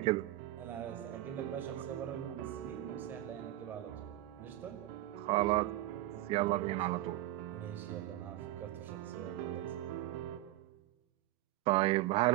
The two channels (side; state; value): left; quieter; 15.7 dB